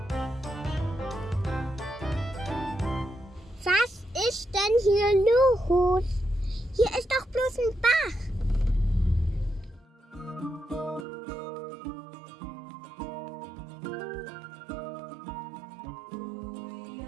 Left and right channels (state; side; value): drops out; left; at 11.1 s